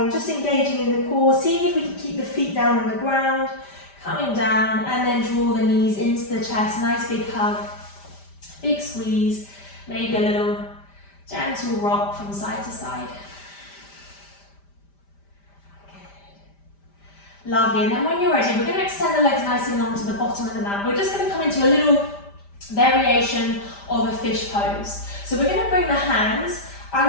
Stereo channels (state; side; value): late; right; 5.1 ms